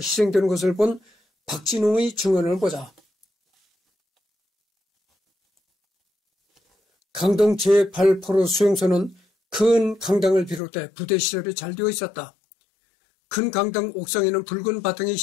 것을 본 박진홍의 증언을 보자. 강동 제8포로 수용소는 큰 강당을 비롯해 부대 시설이 잘 되어 있었다. 큰 강당 옥상에는 붉은 바탕의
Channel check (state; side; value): drops out; right; at 10.6 s